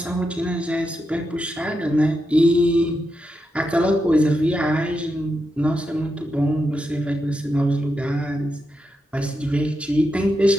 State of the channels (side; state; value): both; normal; correlation 0.86